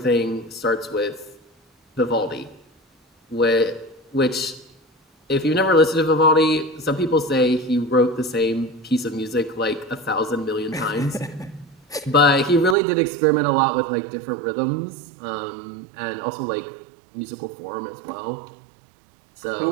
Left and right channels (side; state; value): left; drops out; at 12.8 s